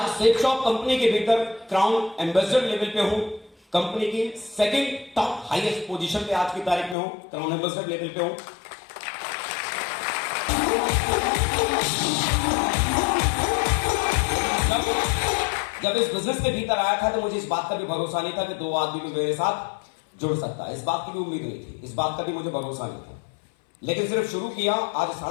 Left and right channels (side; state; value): right; drops out; at 7.0 s